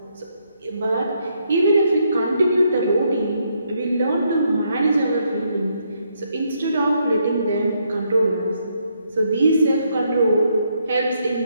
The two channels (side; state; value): both; inverted; correlation -0.75